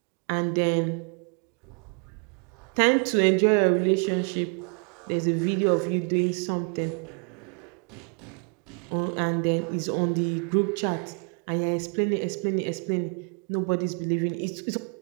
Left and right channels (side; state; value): left; quieter; 39.7 dB